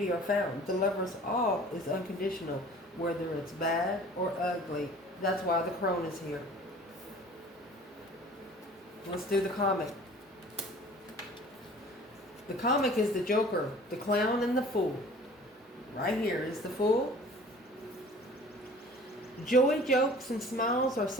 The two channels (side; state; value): both; normal; correlation 0.47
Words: are found. The lover's all is unconditional, whether it's bad or ugly. That's why the crone is here. Let's do the comic. The comic is the Joker, the clown, and the fool. Right here is the fool. Joy, jokes, and smiles are